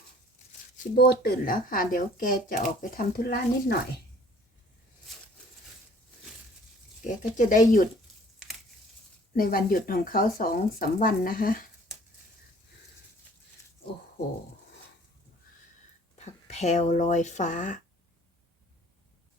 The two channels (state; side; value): normal; both; correlation 0.54